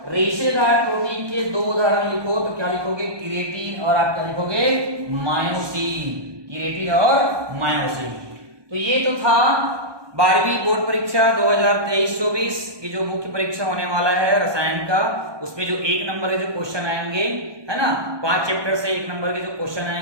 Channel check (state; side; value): late; left; 1.2 ms